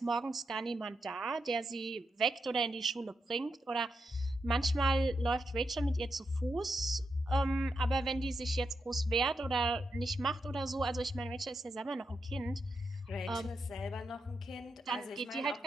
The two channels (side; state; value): both; normal; correlation 0.85